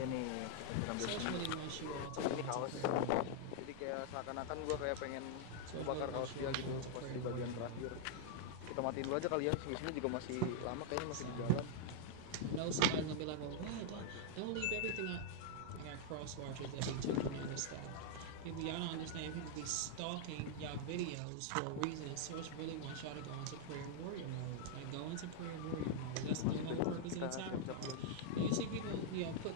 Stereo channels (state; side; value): different; both; correlation -0.01